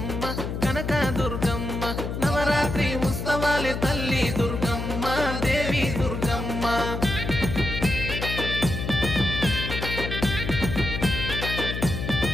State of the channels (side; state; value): left; noise; hum, 4 dB below the sound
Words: కనక దుర్గమ్మ నవరాత్రి ఉత్సవాలే తల్లి దుర్గమ్మ దేవి దుర్గమ్మ